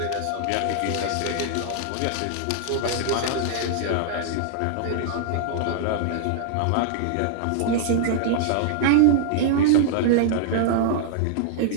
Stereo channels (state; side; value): different; both; correlation -0.01